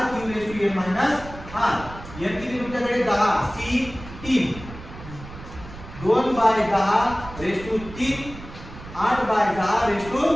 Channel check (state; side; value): noise; right; rumble, 14 dB below the sound